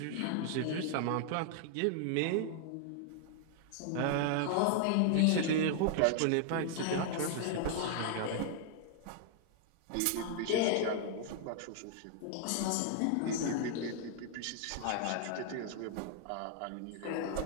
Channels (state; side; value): different; both; correlation 0.00